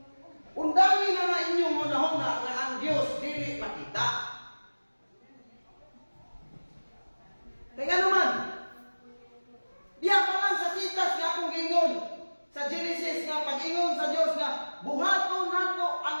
Undangi na inyong hunahuna nga ang Dios dili makita. Kaya naman, diya pa lang sa sitas nga akong gingon sa Genesis nga pag-ingon sa Dios nga buhaton nato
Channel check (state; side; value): inverted; both; correlation -1.00